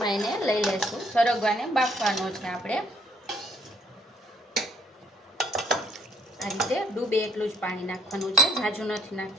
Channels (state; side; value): normal; both; correlation 0.63